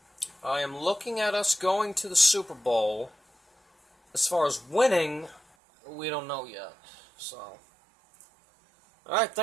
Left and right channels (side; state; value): left; drops out; at 5.4 s